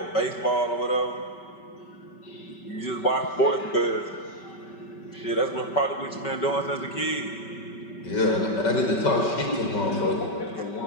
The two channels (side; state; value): right; late; 5.2 ms